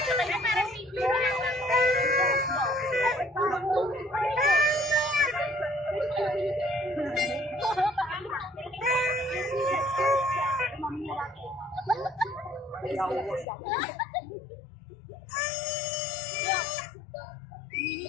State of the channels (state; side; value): drops out; right; at 13.5 s